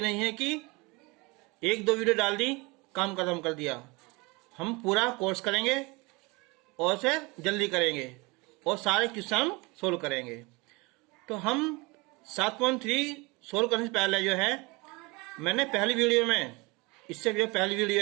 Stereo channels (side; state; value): left; quieter; 25.9 dB